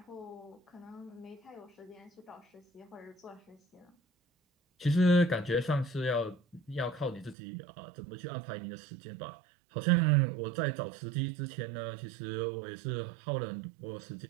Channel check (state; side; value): drops out; left; at 7.4 s